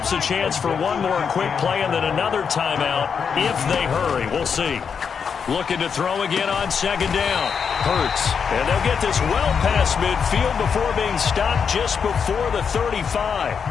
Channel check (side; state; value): right; quieter; 6.5 dB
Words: a chance for one more quick play and then another timeout if they hurry. We'll see. Looking to throw again on second down. Hurts. And they'll get this well past midfield before being stopped just before the 35.